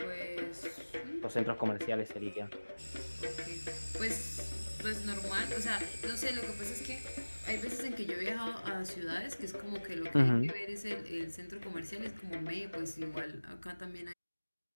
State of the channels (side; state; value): both; inverted; correlation -1.00